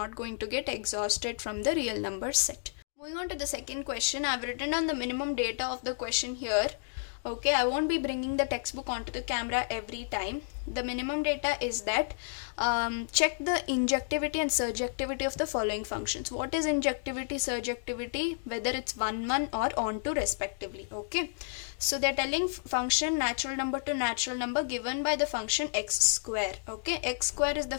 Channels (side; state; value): right; silent; digital silence